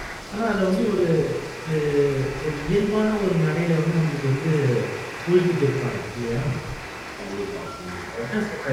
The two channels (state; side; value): identical; both; correlation 1.00